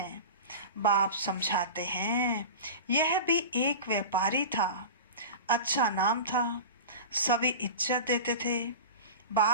बाप समझाते हैं, यह भी एक व्यापारी था, अच्छा नाम था, सभी इज्जत देते थे।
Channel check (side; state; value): both; inverted; correlation -0.31